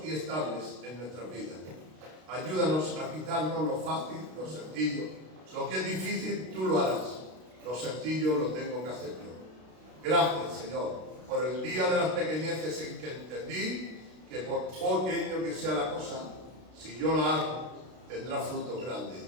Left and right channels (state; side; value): late; left; 32 ms